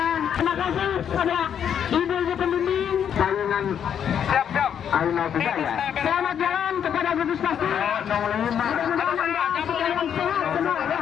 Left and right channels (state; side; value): quieter; right; 8.6 dB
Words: terima kasih kepada ibu-ibu pembimbing saingan. Siap. Ayo bisa ya. Selamat jalan kepada gugus pasti.